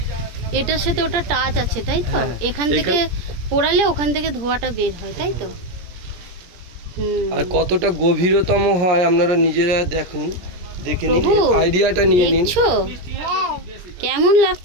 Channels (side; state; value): left; late; 17 ms